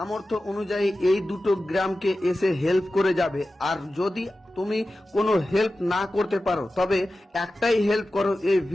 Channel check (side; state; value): both; normal; correlation 0.94